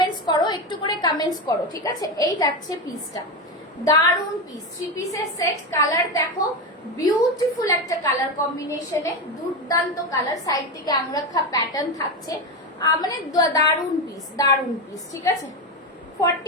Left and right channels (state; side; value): normal; both; correlation 0.15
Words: করো, একটু করে কমেন্টস করো, ঠিক আছে। এই যাচ্ছে পিসটা, দারুন পিস। 3 পিসের সেট, কালার দেখো, বিউটিফুল একটা কালার কম্বিনেশনে, দুর্দান্ত কালার। সাইড থেকে আংরাখা প্যাটার্ন থাকছে, মানে দারুন পিস, দারুন পিস, ঠিক আছে।